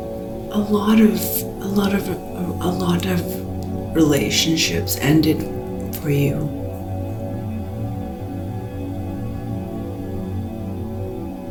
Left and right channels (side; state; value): both; identical; correlation 1.00